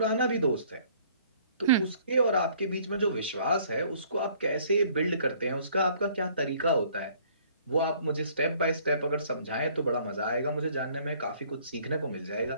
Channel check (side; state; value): both; inverted; correlation -0.59